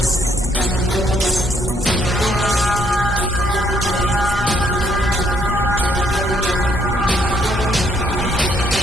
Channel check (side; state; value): both; normal; correlation 0.69